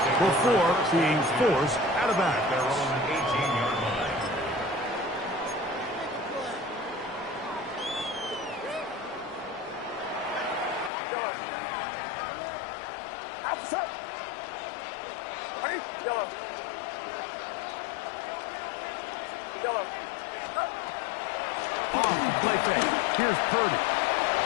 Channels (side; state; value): right; drops out; at 10.9 s